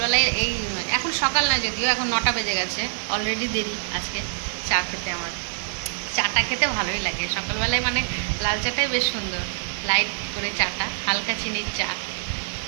এখন সকাল না, যদিও এখন 9টা বেজে গেছে, অলরেডি দেরি আজকে চা খেতে। আমার চাটা খেতে ভালোই লাগে সকালবেলায়, মানে লাল চাটাই বেশ সুন্দর, লাইট করে চাটা, হালকা চিনির চা।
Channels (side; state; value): left; silent; 56 dB below the other